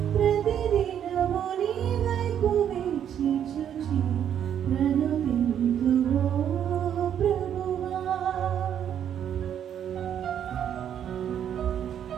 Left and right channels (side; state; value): left; quieter; 9.4 dB